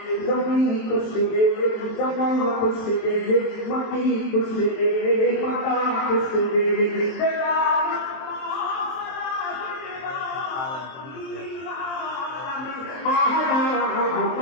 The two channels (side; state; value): right; late; 23 ms